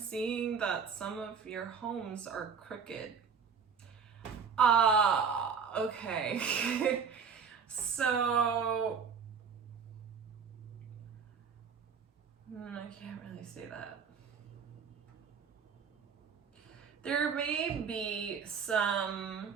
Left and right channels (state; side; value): quieter; left; 6.2 dB